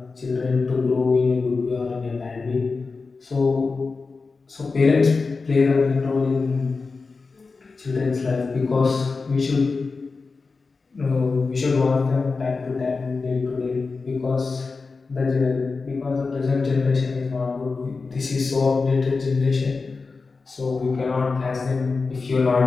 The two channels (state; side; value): quieter; right; 4.3 dB